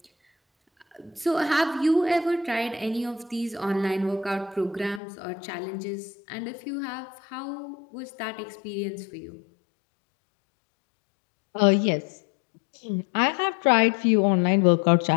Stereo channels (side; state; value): right; drops out; at 5.0 s